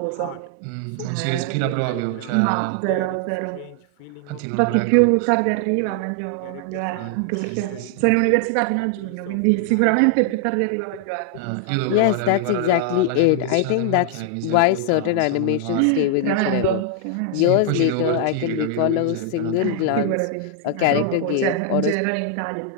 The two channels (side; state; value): both; different; correlation 0.00